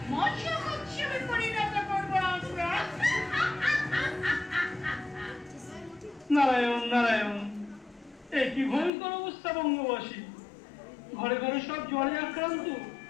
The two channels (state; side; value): drops out; right; at 8.9 s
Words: মৎস্য উৎসবে পরিণত করবো আমরা। নারায়ণ নারায়ণ, এ কি ভয়ঙ্কর অবস্থা বঙ্গবাসী! ঘরে ঘরে সব জ্বরে আক্রান্ত,